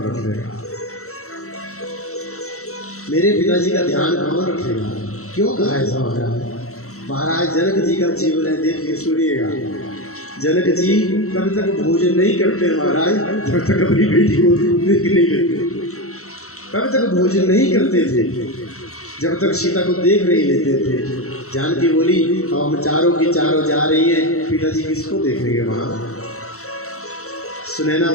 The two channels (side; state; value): right; late; 0.64 ms